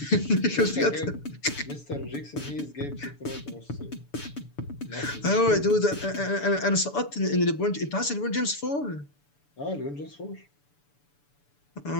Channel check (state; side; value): late; right; 6.9 ms